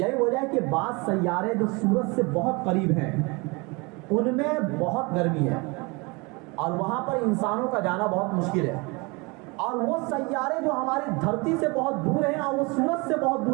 وجہ ہے کہ بعض سیارے جو سورج سے بہت قریب ہیں ان میں بہت گرمی ہے، اور وہاں پر انسانوں کا جانا بہت مشکل ہے، اور وہ سیارے جو ہماری دھرتی سے بہت دور ہیں اور وہ سورج سے بہت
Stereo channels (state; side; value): quieter; left; 27.6 dB